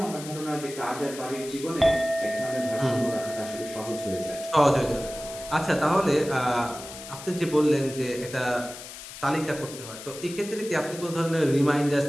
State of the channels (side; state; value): left; noise; hiss, 13 dB below the sound